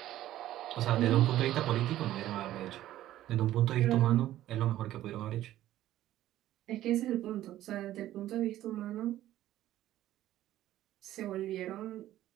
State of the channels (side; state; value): left; quieter; 13.7 dB